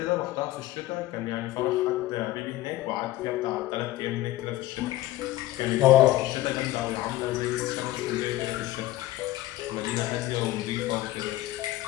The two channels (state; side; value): quieter; right; 15.9 dB